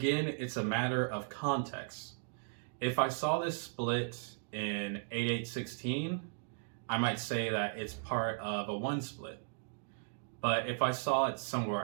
it's a matter of context. If I saw this split in 8/8/16, I might say that it's part of a 1 split. But if I saw it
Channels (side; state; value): left; silent; digital silence